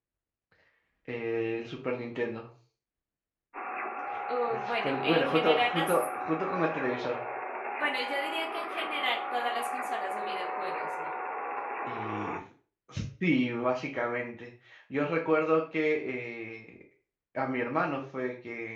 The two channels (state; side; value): identical; both; correlation 1.00